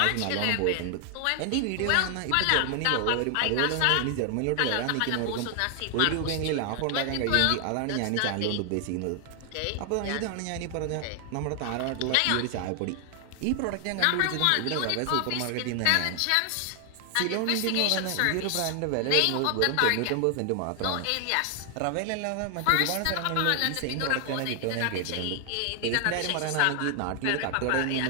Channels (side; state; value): both; different; correlation 0.00